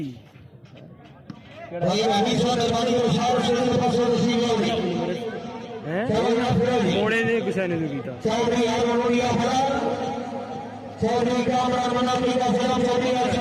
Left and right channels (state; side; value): identical; both; correlation 1.00